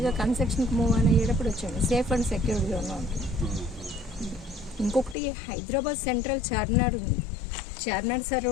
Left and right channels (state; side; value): drops out; right; at 5.2 s